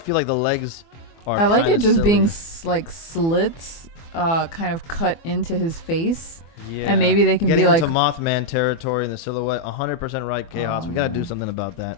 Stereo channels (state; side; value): late; right; 24 ms